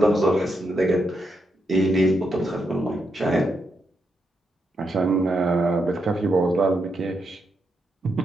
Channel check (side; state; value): both; normal; correlation 0.82